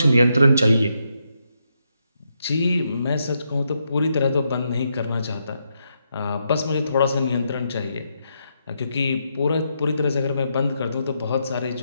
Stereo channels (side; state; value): both; inverted; correlation -0.81